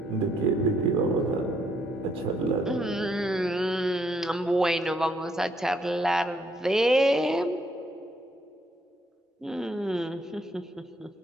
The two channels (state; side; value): normal; both; correlation 0.71